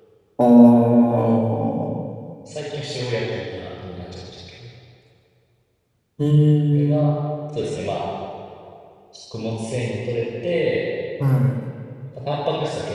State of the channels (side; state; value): both; identical; correlation 1.00